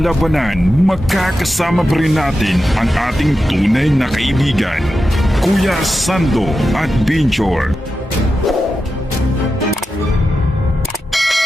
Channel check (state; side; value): normal; both; correlation 0.90